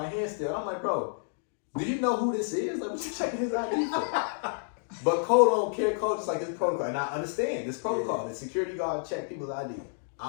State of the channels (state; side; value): silent; right; digital silence